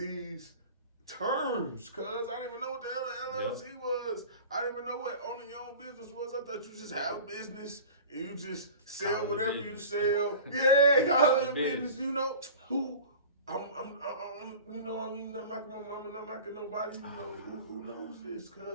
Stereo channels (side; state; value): both; inverted; correlation -0.39